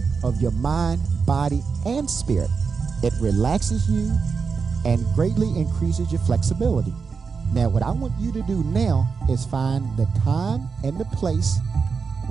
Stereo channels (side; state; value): left; quieter; 5.3 dB